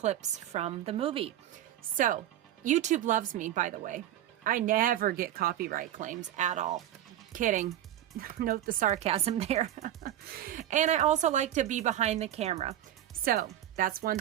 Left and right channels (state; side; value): quieter; left; 12.2 dB